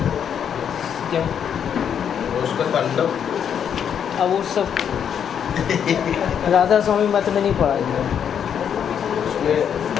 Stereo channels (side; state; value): right; quieter; 8.2 dB